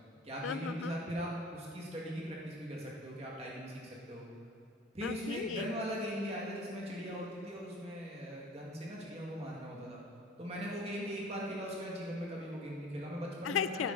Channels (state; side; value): normal; both; correlation 0.43